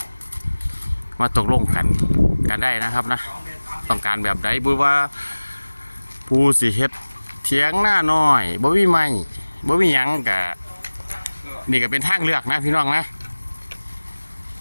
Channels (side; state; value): both; inverted; correlation -1.00